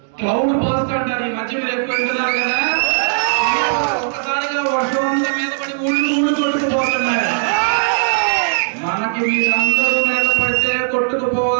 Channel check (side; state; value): left; silent; digital silence